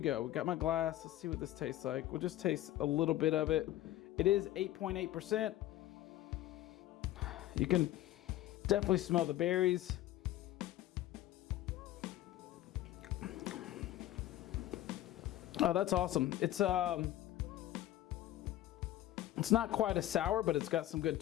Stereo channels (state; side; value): quieter; right; 14.2 dB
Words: go. We got my glass. Let's see what this tastes like. We'll just taste a little bit of it. It is 8.8%. You can definitely smell the berries. Oh, that's awesome. It's not quite a sour, but it's got some good